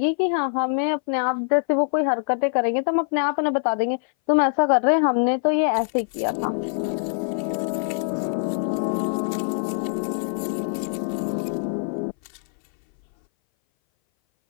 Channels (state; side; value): silent; right; 59 dB below the other